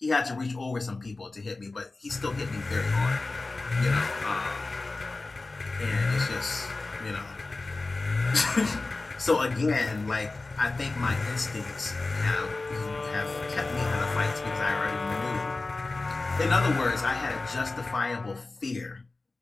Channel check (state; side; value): quieter; right; 3.4 dB